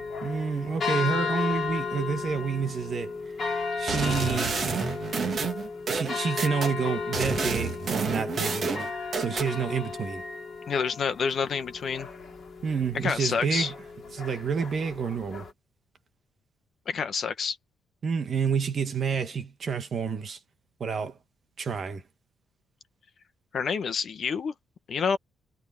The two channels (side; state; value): both; normal; correlation 0.73